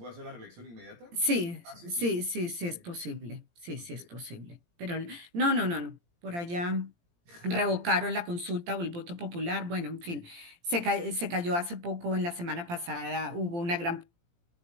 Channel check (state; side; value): late; left; 17 ms